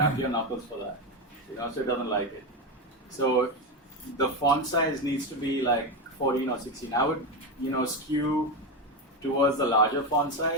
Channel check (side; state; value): both; normal; correlation 0.13